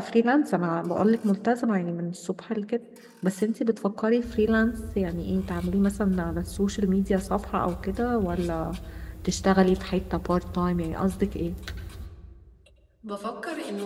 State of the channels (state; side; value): identical; both; correlation 1.00